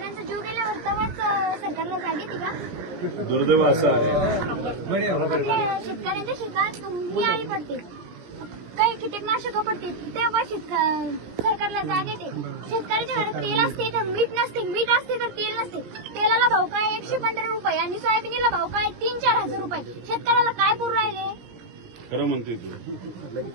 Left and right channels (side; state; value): left; late; 17 ms